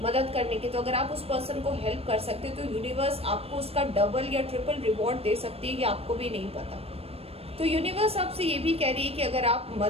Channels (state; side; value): late; left; 0.28 ms